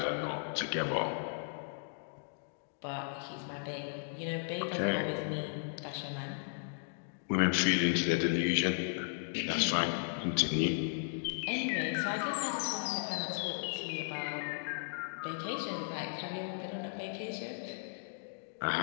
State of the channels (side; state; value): right; silent; digital silence